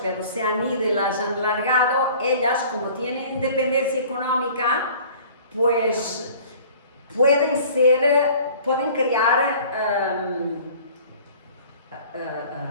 pero se han ido y las han largado, ellas, como tienen independencia económica, pues pueden crear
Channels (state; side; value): inverted; both; correlation -0.48